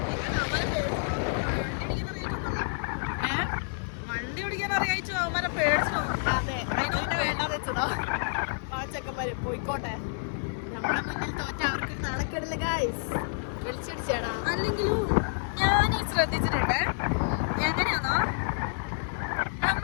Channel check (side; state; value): right; silent; digital silence